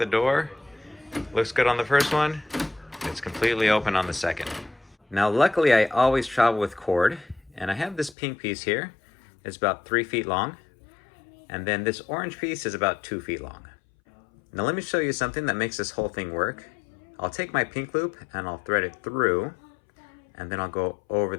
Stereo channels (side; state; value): right; drops out; at 8.2 s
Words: door, looks good on the first one, it's completely open on the second. Now luckily I always travel with cord, and I have this pink piece here. It's about 3 feet long, and then this orange piece is about 2 feet long. Now let me show you something that makes this whole thing work. I'll take my pink loop and I'll thread it through, and then I'll go over